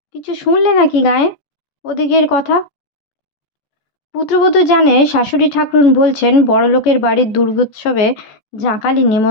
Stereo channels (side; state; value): right; late; 14 ms